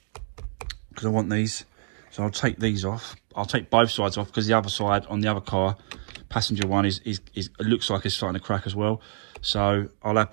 because I want these. So I'll take these off. I'll take both sides off because the other side on the other car, passenger one, is it looks like it's starting to crack as well. So I'll have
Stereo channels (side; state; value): left; silent; digital silence